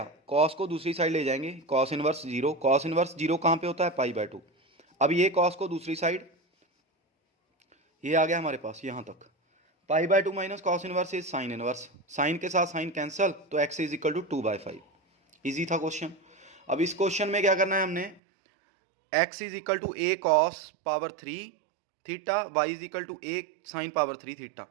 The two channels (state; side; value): drops out; left; at 18.2 s